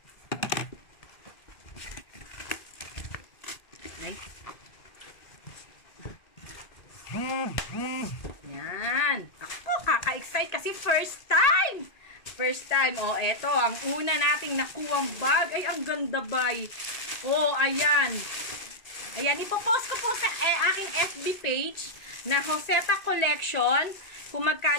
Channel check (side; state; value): right; late; 1.9 ms